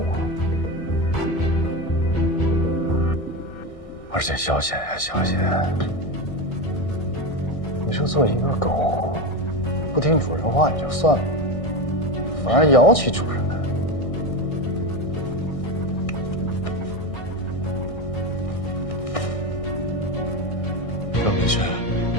啊。而且小贤呀，小贤，你说做一个狗。不听主人话也就算了，反而摇起主人来。赵明轩，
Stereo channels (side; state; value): right; late; 1.6 ms